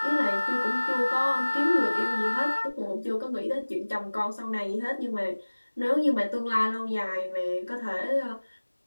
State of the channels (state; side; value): inverted; both; correlation -1.00